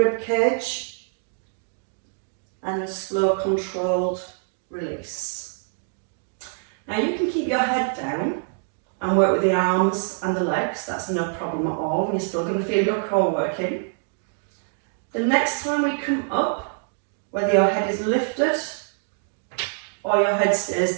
cage, and a slow controlled release. Now you can keep your head down and work with the arms and the legs, that's no problem at all, and you're still going to feel your core working. The next time we come up, whether your head is lifted or your head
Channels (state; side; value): silent; left; digital silence